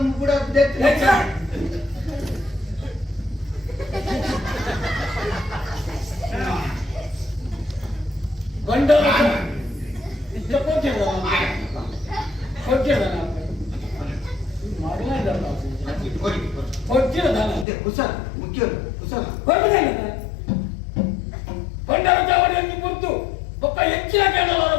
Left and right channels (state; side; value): drops out; right; at 17.7 s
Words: ಕೂಡ ಗಂಡ ಕುಸಲ ಮುಖ್ಯ ಕುಸಲ ಬಂಡಾರ ಚಾವಡಿಯನ್ನು ಕುರಿತು ಒಬ್ಬ ಹೆಚ್ಚಿನ ಕೇಳಲಾರ